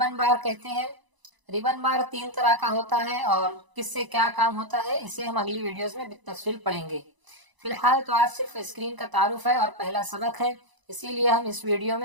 بار کہتے ہیں۔ ریبن بار 3 طرح کا ہوتا ہے اور کس سے کیا کام ہوتا ہے اسے ہم اگلی ویڈیوز میں بالتفصیل پڑھیں گے۔ فی الحال تو آج صرف اسکرین کا تعارف ہے اور پہلا سبق ہے، اسی لیے ہم اس ویڈیو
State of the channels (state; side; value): late; left; 1.0 ms